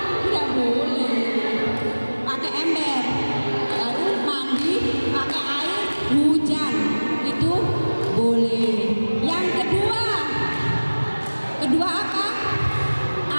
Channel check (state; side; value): inverted; both; correlation -1.00